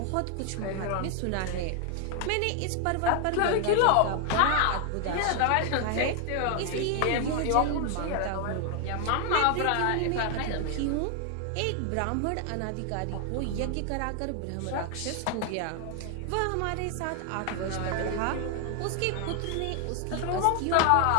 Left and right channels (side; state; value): both; different; correlation 0.00